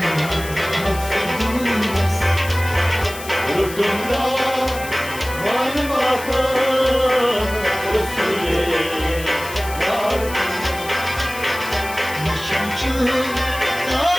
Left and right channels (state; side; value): noise; left; hiss, 13 dB below the sound